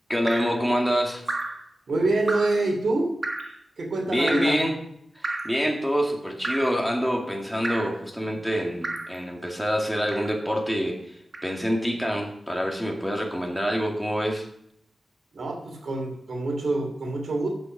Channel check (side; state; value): both; normal; correlation 0.94